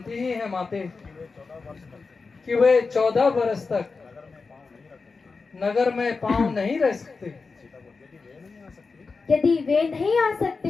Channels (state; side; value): quieter; right; 4.4 dB